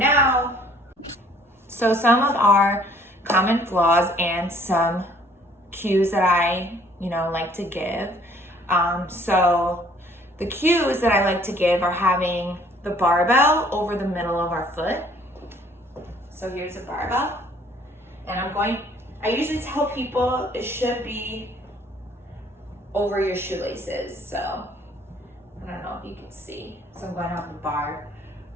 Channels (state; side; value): normal; both; correlation 0.58